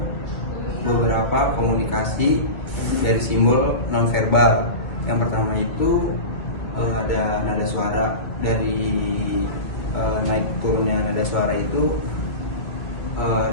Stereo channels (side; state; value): right; late; 2.1 ms